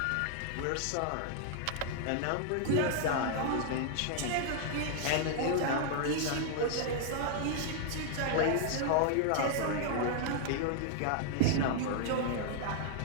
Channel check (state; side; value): different; both; correlation 0.00